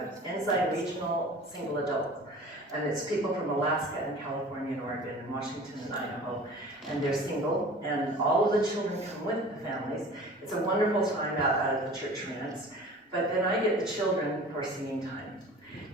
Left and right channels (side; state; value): both; normal; correlation 0.42